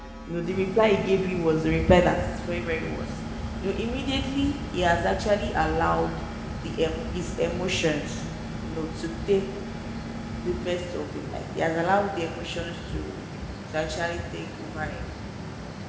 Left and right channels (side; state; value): both; identical; correlation 1.00